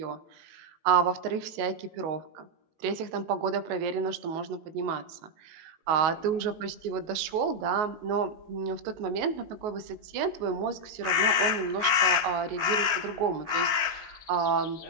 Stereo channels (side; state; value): left; late; 19 ms